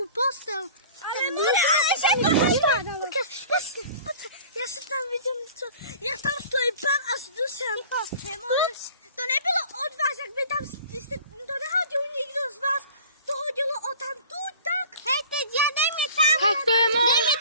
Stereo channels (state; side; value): inverted; both; correlation -0.44